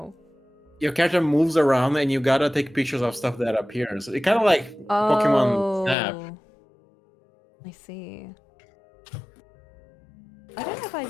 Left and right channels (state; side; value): drops out; right; at 6.0 s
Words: Your character moves around and you gotta take pictures of stuff that appears. It kind of like Pokemon Snap. Oh, I see. I don't know if